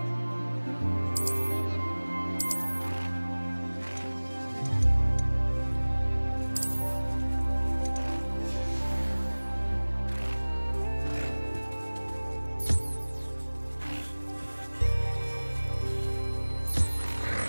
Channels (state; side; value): inverted; both; correlation -1.00